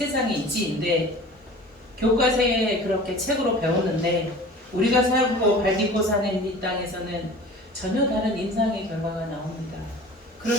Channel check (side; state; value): both; normal; correlation 0.41